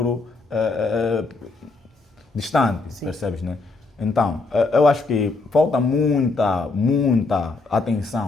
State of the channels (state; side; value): quieter; right; 3.7 dB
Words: distante, sim. Percebes, né? Então, eu acho que falta muita